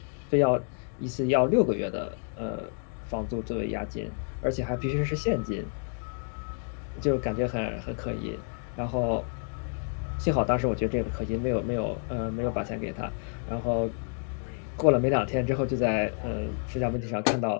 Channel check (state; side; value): silent; right; 56 dB below the other